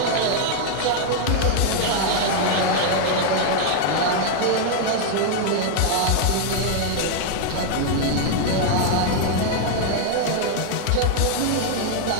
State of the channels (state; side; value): different; both; correlation 0.00